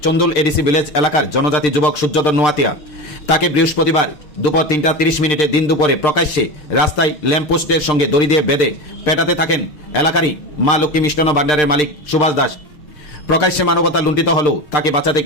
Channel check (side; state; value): right; late; 6.6 ms